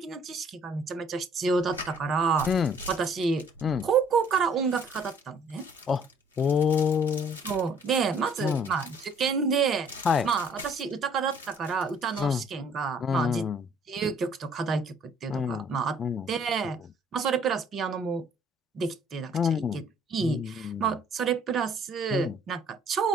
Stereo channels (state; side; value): normal; both; correlation 0.58